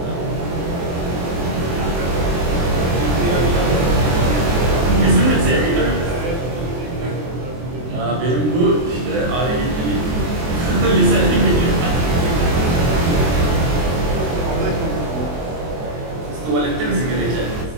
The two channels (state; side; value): late; left; 23 ms